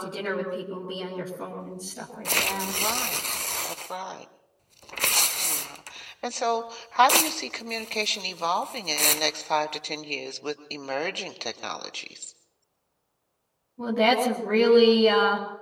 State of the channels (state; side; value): identical; both; correlation 1.00